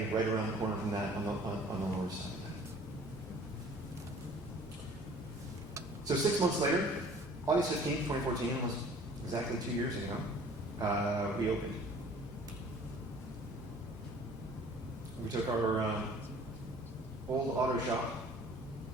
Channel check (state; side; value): normal; both; correlation 0.50